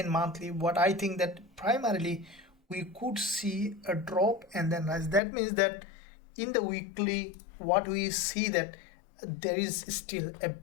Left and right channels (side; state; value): right; drops out; at 5.2 s